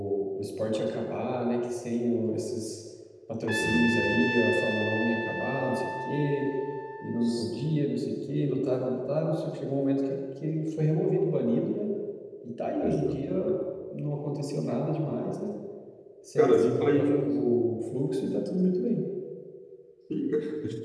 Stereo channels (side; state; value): both; identical; correlation 1.00